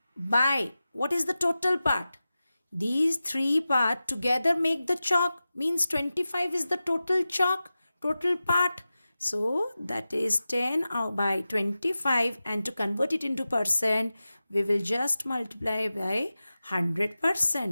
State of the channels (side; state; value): both; inverted; correlation -0.94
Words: by what is the total part? These three parts together make the chalk, means 25 is the total chalk, total part. So that is 10 by 25, and to convert it into percent, we will just multiply by